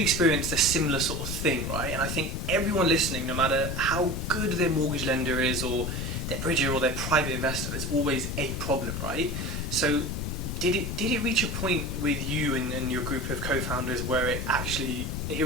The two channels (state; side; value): noise; left; rumble, 3 dB below the sound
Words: a similar sort of thing, right? And I think everyone listening, no matter how good their mortgage lender is, or their bridger, or their private investor, there's always a problem, right? So did it reach a point with you and your group of co-founders where it